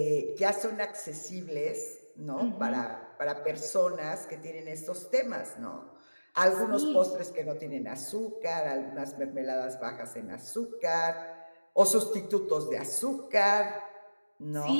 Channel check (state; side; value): inverted; both; correlation -1.00